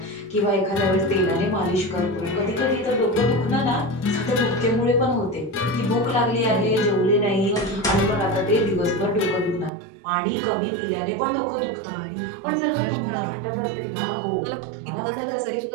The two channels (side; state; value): left; drops out; at 9.7 s